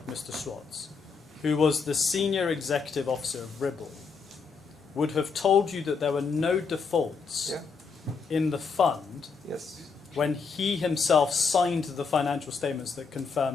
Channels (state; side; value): quieter; right; 5.2 dB